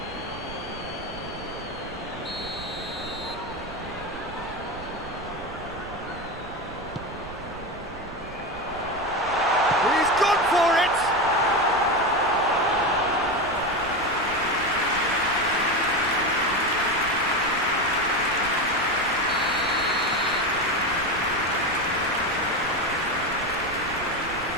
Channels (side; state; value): right; noise; rumble, 16 dB below the sound